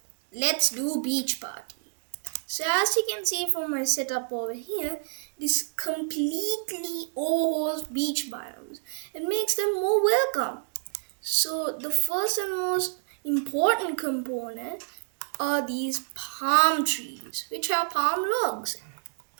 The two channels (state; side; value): silent; left; digital silence